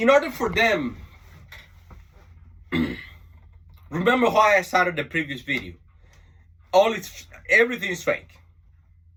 order for them, remember why I started the previous video. Everything is fake.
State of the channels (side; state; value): both; identical; correlation 1.00